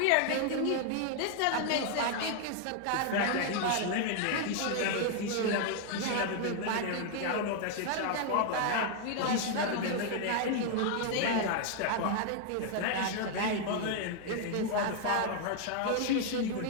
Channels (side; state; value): both; different; correlation 0.00